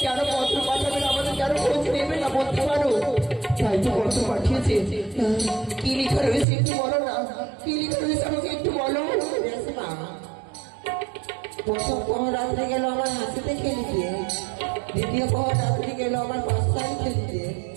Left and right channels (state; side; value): drops out; left; at 6.5 s